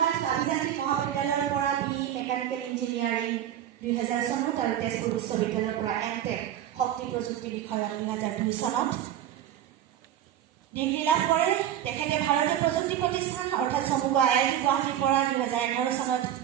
আভিযান্ত্ৰিক মহাবিদ্যালয়ৰ পৰা বি মেকানিকেল ইঞ্জিনিয়াৰিং 2000 চনত আৰু তেজপুৰ বিশ্ববিদ্যালয়ৰ পৰা এমটেক শক্তি প্ৰযুক্তি বিষয়ত 2002 চনত ডিগ্ৰী লাভ কৰে। তেখেতে ভাৰতীয় প্ৰযুক্তি প্ৰতিষ্ঠান অৰ্থাৎ চমুকৈ IIT গুৱাহাটীৰ পৰা 2011 চনত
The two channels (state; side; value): quieter; left; 11.0 dB